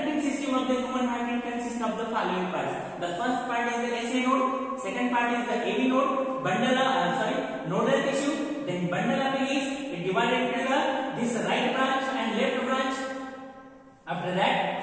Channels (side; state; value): both; identical; correlation 1.00